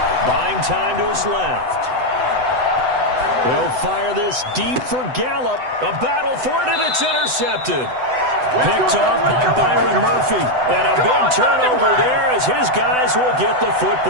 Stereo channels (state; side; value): late; left; 7.9 ms